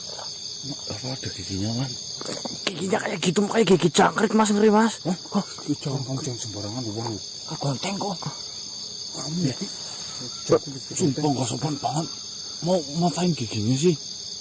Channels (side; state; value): both; identical; correlation 1.00